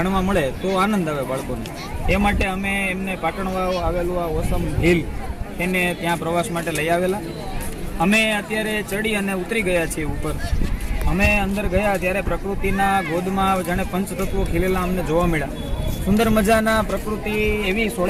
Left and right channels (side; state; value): both; identical; correlation 1.00